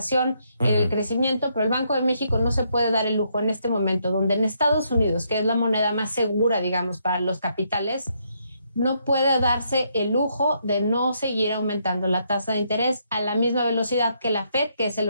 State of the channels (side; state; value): both; inverted; correlation -0.75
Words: en el crecimiento, pero el Banco de México no se puede dar el lujo en este momento, donde en Estados Unidos, que es la moneda más segura, digamos, para los capitales, no puede darse el lujo de no seguir aumentando la tasa de interés a la misma velocidad que la Fed, que es el